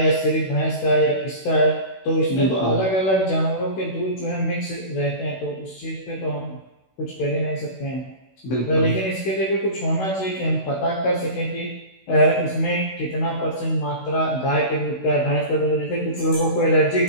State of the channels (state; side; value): late; right; 16 ms